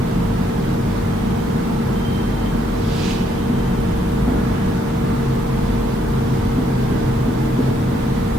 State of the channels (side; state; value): both; normal; correlation 0.72